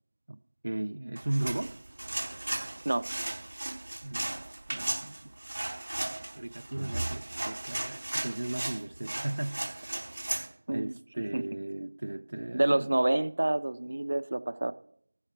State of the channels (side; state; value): both; inverted; correlation -1.00